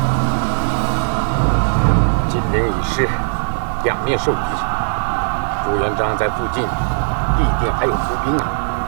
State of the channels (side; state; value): left; silent; digital silence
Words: 金陵已失，两面受敌，朱元璋在附近必定还有伏兵啊！